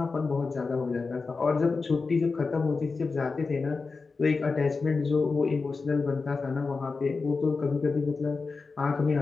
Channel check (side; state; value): right; quieter; 4.3 dB